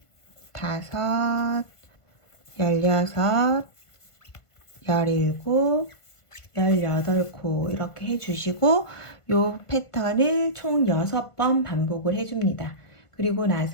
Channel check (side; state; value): right; late; 1.5 ms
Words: 다섯, 16, 17, 18코 이렇게 해주시고 이 패턴을 총 6번 반복을 해줍니다. 그리고